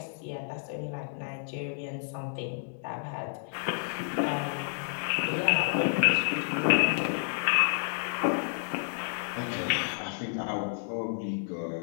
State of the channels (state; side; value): silent; right; 58 dB below the other